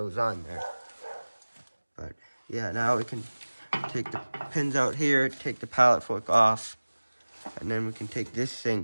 on there. But yeah, now we can take the pins out here, take the pallet fork off, and then we can take this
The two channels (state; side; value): inverted; both; correlation -1.00